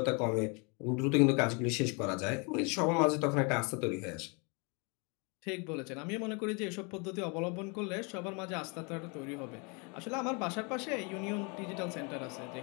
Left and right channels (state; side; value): quieter; right; 32.5 dB